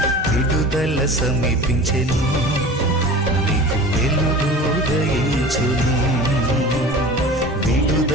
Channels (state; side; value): normal; both; correlation 0.38